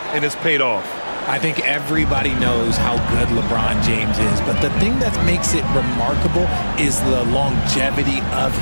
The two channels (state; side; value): inverted; both; correlation -1.00